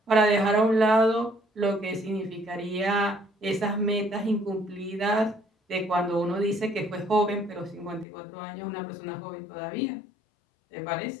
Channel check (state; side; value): drops out; right; at 8.1 s